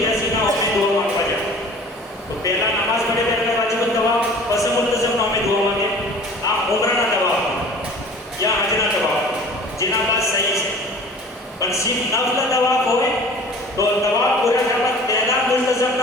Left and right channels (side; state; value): both; normal; correlation 0.45